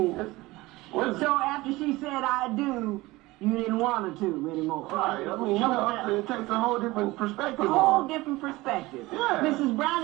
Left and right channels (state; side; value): quieter; left; 20.1 dB